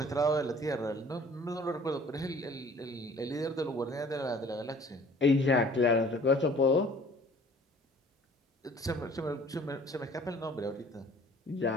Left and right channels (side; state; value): both; normal; correlation 0.52